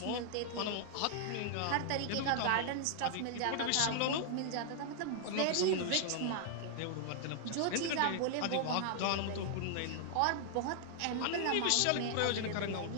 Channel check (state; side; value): different; both; correlation -0.01